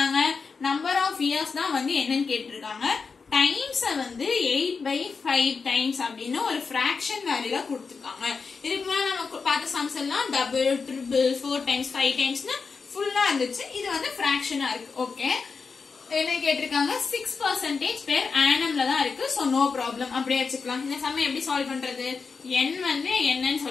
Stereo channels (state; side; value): quieter; right; 5.0 dB